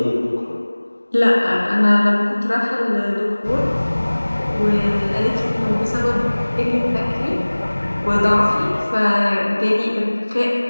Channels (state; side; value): inverted; both; correlation -1.00